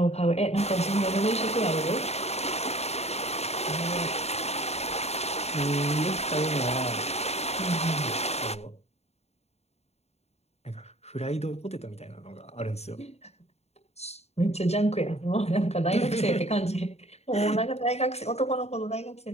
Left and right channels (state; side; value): late; right; 0.31 ms